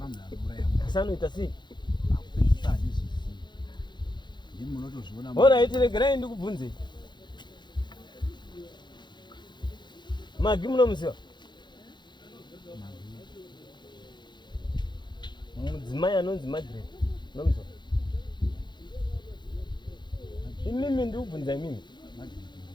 munhu anouraya munhu. Asi anoita sei? Akupedzisa handizvizivi. Ndimi munotozviona. Alright, regerai ndikubvunzei. Magi munomuziva? Mudzimai anonzi Margaret. Munomuziva? Imimi ndikubvunza imimi.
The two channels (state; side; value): late; right; 0.22 ms